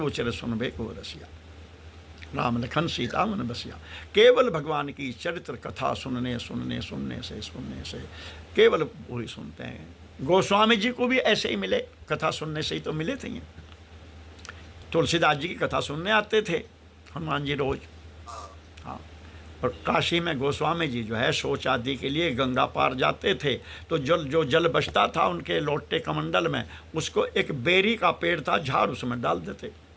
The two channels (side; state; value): both; identical; correlation 1.00